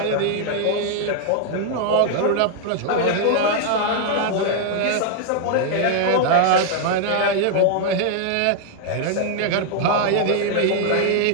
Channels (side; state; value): both; different; correlation 0.00